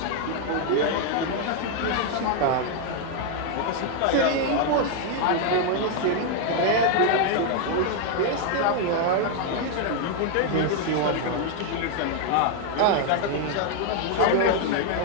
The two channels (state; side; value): different; both; correlation 0.00